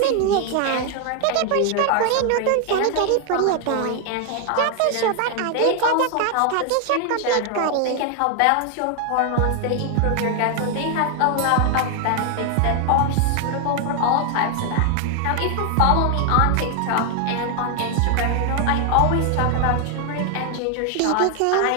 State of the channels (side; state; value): both; different; correlation 0.00